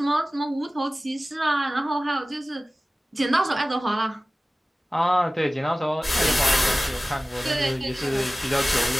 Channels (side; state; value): both; normal; correlation 0.97